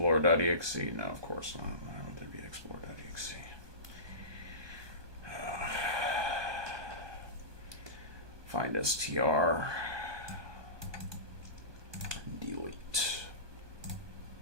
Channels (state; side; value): late; left; 1.2 ms